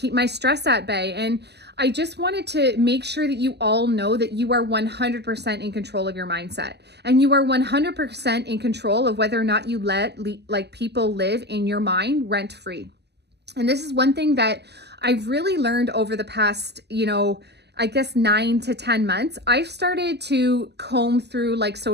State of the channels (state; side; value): late; left; 0.49 ms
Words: my stress at bay? And I just wanted to make sure that you all know that you are 100% in control of your mindset. And you are 100% in control of whether or not you let people live in your mind rent free. And this is one thing that I've really learned over the past, I guess 9 to 10 months. I've started to comb through like